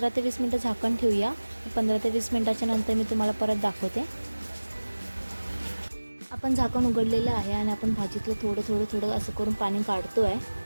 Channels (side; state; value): both; inverted; correlation -1.00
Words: ते 20 मिनटं झाकण ठेवूया. 15 ते 20 मिनटाच्या नंतर मी तुम्हाला परत दाखवते. आपण झाकण उघडलेलं आहे आणि आपण भाजीतलं थोडं असं करून पाणी काढतोय.